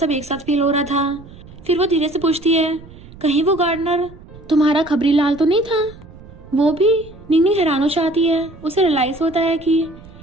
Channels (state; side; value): noise; right; rumble, 19 dB below the sound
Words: एक साथ फील हो रहा था। फिर वो धीरे से पूछती है कहीं वो गार्डनर तुम्हारा खबरी लाल तो नहीं था। वो भी। निंगनिंग हैरान हो जाती है। उसे रियलाइज होता है कि